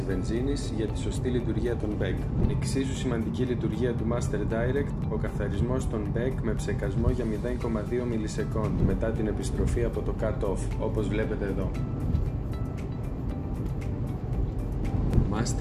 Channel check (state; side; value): identical; both; correlation 1.00